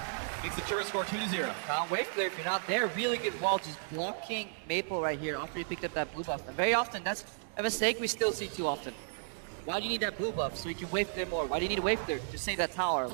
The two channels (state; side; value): silent; left; digital silence